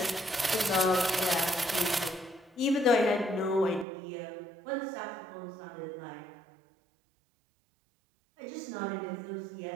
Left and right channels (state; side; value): drops out; left; at 3.9 s